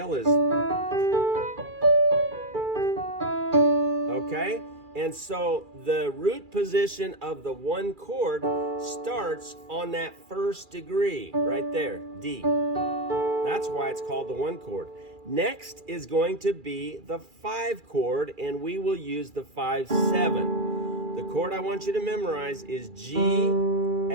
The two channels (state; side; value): late; left; 2.4 ms